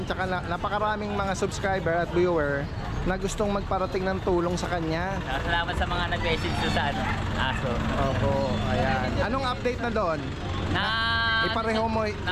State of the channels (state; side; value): identical; both; correlation 1.00